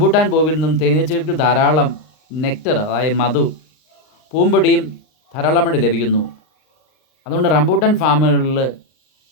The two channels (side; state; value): right; late; 39 ms